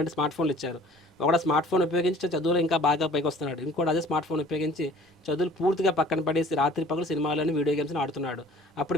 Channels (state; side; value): normal; both; correlation 0.51